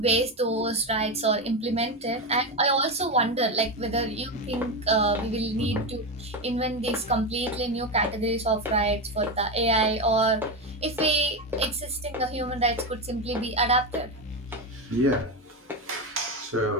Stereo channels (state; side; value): normal; both; correlation 0.14